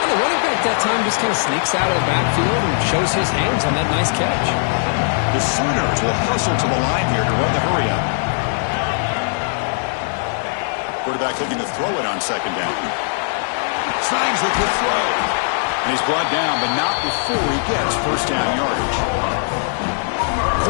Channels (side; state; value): right; silent; digital silence